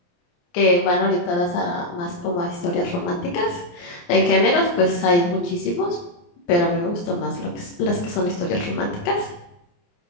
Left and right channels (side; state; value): right; late; 29 ms